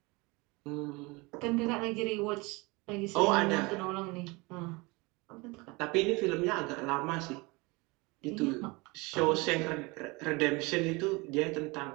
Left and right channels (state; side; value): quieter; left; 25.4 dB